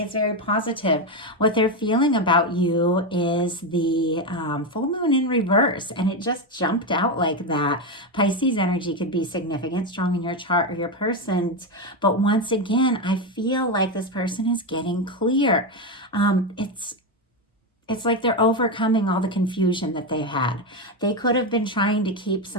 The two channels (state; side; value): normal; both; correlation 0.10